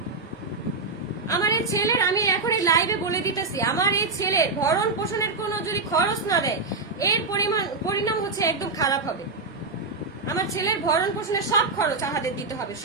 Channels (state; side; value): quieter; left; 3.9 dB